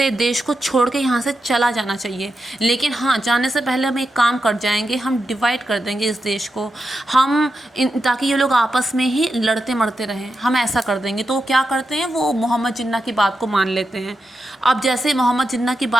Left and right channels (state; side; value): normal; both; correlation 0.87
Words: देश को छोड़ के यहाँ से चला जाना चाहिए। लेकिन हाँ, जाने से पहले हम एक काम कर जाएंगे, हम डिवाइड कर देंगे इस देश को, ताकि ये लोग आपस में ही लड़ते मरते रहें, हम ऐसा कर देंगे। तो वो क्या करते हैं, वो मोहम्मद जिन्ना की बात को मान लेते हैं। अब जैसे मोहम्मद जिन्ना की